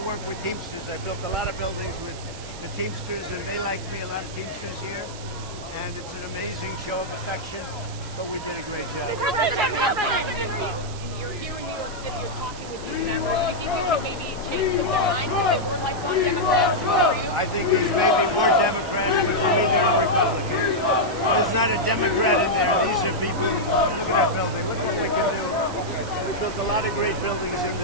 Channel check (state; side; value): noise; right; hiss, 15 dB below the sound